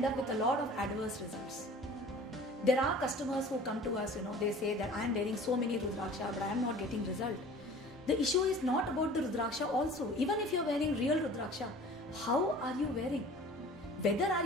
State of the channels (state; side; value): normal; both; correlation 0.44